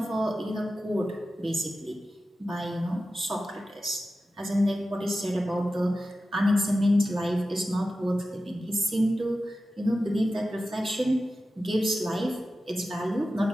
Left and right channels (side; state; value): both; normal; correlation 0.93